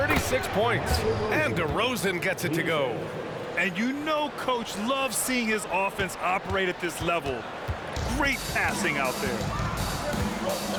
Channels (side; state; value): both; identical; correlation 1.00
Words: points. And DeRozan gets it to go. And you know Coach loves seeing his offense operate at this level. Great passing out there.